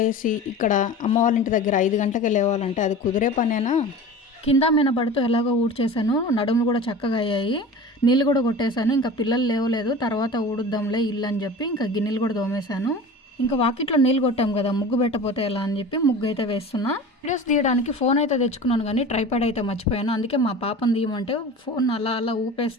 లేచి ఇక్కడ అమ్మ వాళ్ళ ఇంటి దగ్గర 5 గంటలకే లేవాలంటే అది కుదిరే పనేనా? కింద మినబడుతూ ఎలాగో ఊడ్చేసాను. నడుములు కూడా చక్కగా అయ్యాయి. నీళ్ళు కూడా కొట్టేశాను. ఇంకా పిల్లలు లేవలేదు, తర్వాత ఊడుద్దాంలే ఇల్లు అని చెప్పి ఇంకా గిన్నెలు కూడా తోమేశాను. ఇంకా వాకిట్లో నీళ్ళు కొట్టాం కదా, ముగ్గు పెట్టపోతే ఎలా అని చెప్పి ముగ్గు అయితే వేస్తున్నా. వీడియోస్ తీయడానికి ఫోన్ అయితే తెచ్చుకున్నాను, కానీ ట్రైపాడ్ అయితే మర్చిపోయాను. అందుకే మా పాపను తీయమంటే ఫోన్ అలా అలా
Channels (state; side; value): normal; both; correlation 0.36